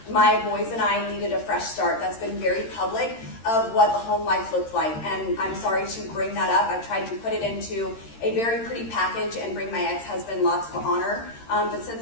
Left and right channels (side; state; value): right; late; 13 ms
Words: My boys and I needed a fresh start. That's been very public of what the home life looked like. And I'm sorry to bring that up. I've tried to put it into a very pretty package and bring my ex-husband lots of honor. But since